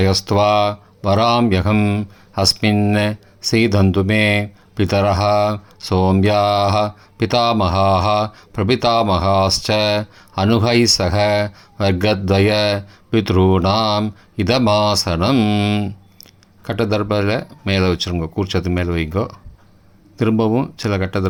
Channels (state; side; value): identical; both; correlation 1.00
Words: வராம்யகம் அஸ்மின் சீதந்து மே பிதரஹ சோம்யாஹ பிதாமகாஹ பிரபிதாமகாஸ்ச அனுகை சக வர்க்கத்வய பித்ருணாம் இதமாசனம். கட்டதர்பத்தில் மேலே வச்சுருங்க. கூர்ச்சத்து மேலே வைங்கோ. திரும்பவும் சில